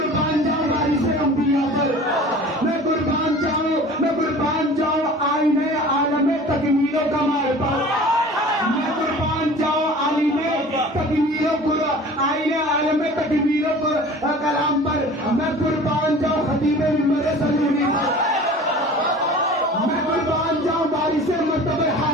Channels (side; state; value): both; normal; correlation 0.42